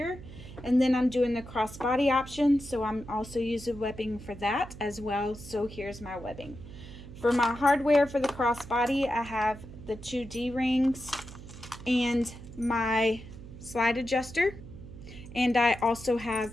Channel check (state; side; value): noise; right; hum, 15 dB below the sound